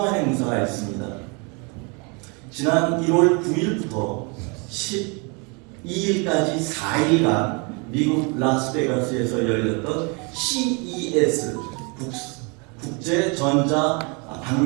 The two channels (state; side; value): quieter; left; 32.2 dB